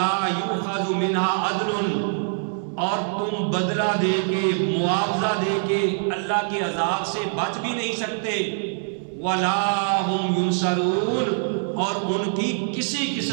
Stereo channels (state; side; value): silent; left; 63 dB below the other